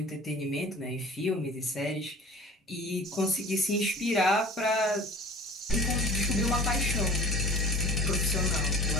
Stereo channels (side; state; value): both; normal; correlation 0.42